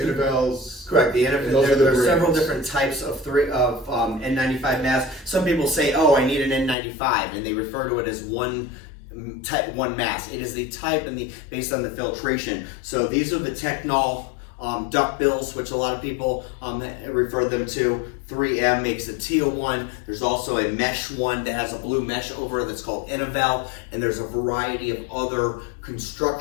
Correct. Those are There are the several brands. different types of N95 masks. Some people say, "Oh, I need an N95," and they refer to it as one mask. It is the type and based on the filtration. So these are the Technol duck bills, which a lot of people refer them to. 3M makes a teal one. There's also a mesh one that has a blue mesh over it that's called Innovel, and there's a variety of other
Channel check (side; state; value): right; drops out; at 6.8 s